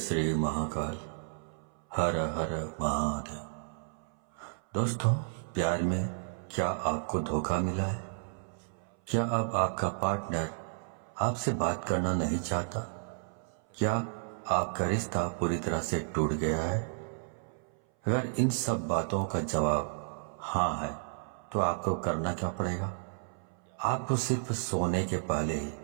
महाकाल। हर हर महादेव। दोस्तों, प्यार में क्या आपको धोखा मिला है? क्या अब आपका पार्टनर आपसे बात करना नहीं चाहता? क्या आपका रिश्ता पूरी तरह से टूट गया है? अगर इन सब बातों का जवाब हाँ है तो आपको करना क्या पड़ेगा? आपको सिर्फ सोने के पहले ही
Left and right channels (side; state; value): left; silent; 56 dB below the other